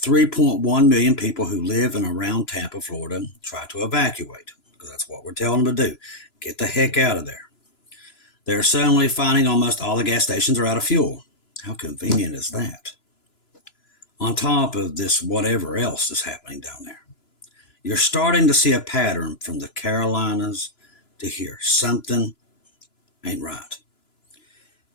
million people who live in around Tampa, Florida, try to evacuate, because that's what we're telling them to do. Get the heck out of there. They're suddenly finding almost all the gas stations are out of fuel. How convenient is that? On top of this, whatever else is happening down there. You're starting to see a pattern from the Carolinas to here. Something ain't right.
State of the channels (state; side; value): late; right; 2.9 ms